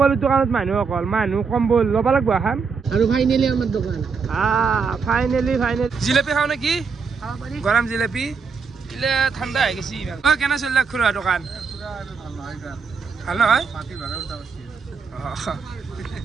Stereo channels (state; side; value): quieter; left; 5.4 dB